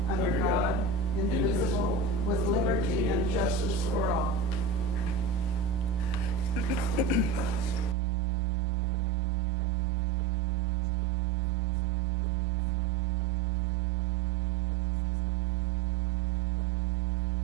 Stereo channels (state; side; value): drops out; left; at 8.0 s